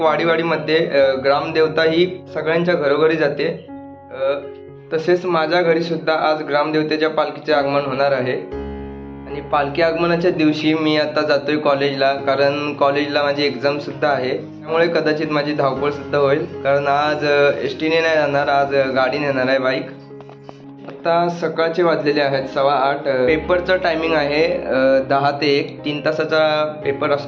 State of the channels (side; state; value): both; identical; correlation 1.00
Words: वाडीवाडीमध्ये ग्रामदेवता ही सगळ्यांच्या घरोघरी जाते. तसेच माझ्या घरी सुद्धा आज ग्रामदेवतेच्या पालखीचे आगमन होणार आहे आणि पालखी आगमनाच्या दिवशी मी आता जातोय कॉलेजला, कारण कॉलेजला माझी एक्झाम सुद्धा आहे. त्यामुळे कदाचित माझी धावपळ सुद्धा होईल, कारण आज एसटीने नाही जाणार, आज गाडीने येणार आहे, बाईक. आता सकाळचे वाजलेले आहेत 8:15. पेपरचं टायमिंग आहे 10 ते 1, 3 तासाचा पेपर